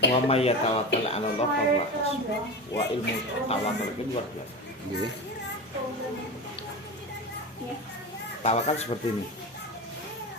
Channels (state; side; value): normal; both; correlation 0.26